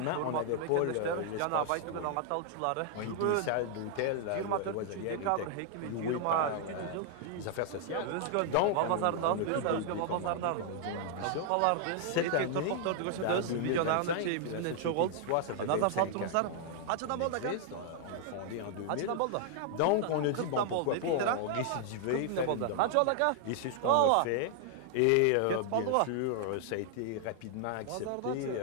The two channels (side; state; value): both; different; correlation 0.00